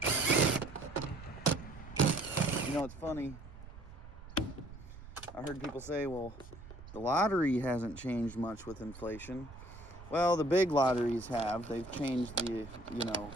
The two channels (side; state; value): right; noise; rumble, 16 dB below the sound